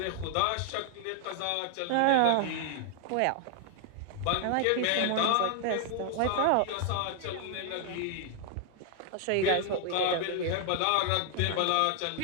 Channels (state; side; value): different; both; correlation 0.00